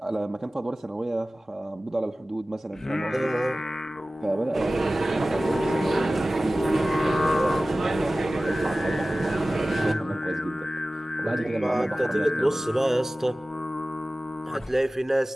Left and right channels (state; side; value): normal; both; correlation 0.96